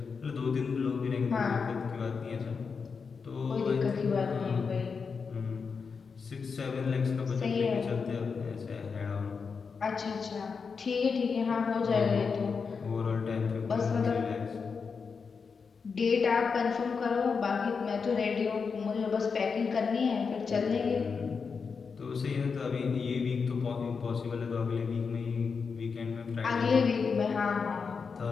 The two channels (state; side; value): quieter; right; 5.4 dB